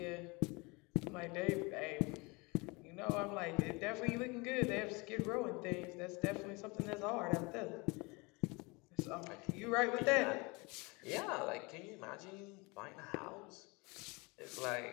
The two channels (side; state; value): right; quieter; 26.9 dB